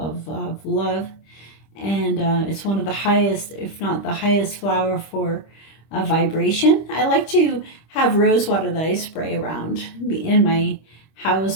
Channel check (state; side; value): late; right; 25 ms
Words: love. And it's one of the highest, if not the highest flower for vibration. I like to have rose water that I spray around in my